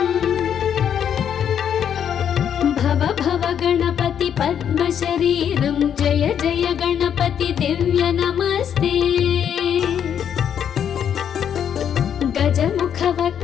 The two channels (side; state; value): right; quieter; 8.7 dB